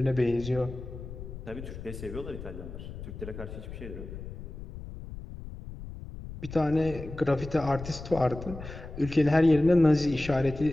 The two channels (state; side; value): noise; left; rumble, 11 dB below the sound